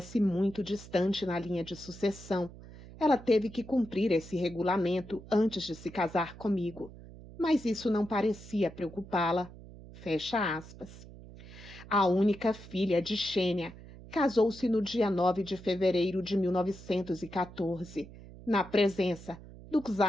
muito distante na linha de sucessão, ela teve que cumprir esse regulamento antes de se casar comigo, mas isso não parecia preocupá-la. Fecha aspas. A única filha de Xênia casou-se no dia 9 de fevereiro de 1914, na presença do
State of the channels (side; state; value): right; noise; hum, 17 dB below the sound